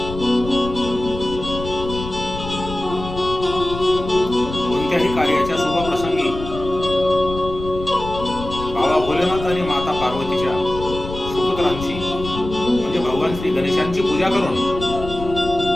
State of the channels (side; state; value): left; noise; rumble, 10 dB below the sound